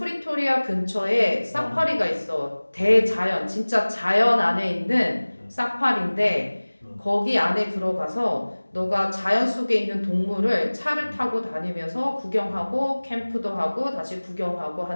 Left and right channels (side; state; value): both; inverted; correlation -1.00